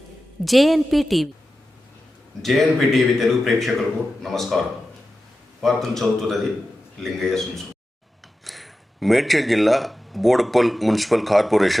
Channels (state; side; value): normal; both; correlation 0.92